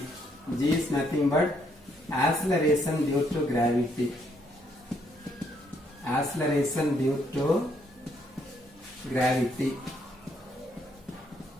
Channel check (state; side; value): normal; both; correlation 0.72